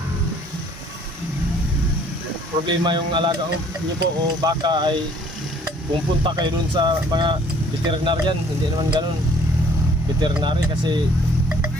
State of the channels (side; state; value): both; normal; correlation 0.59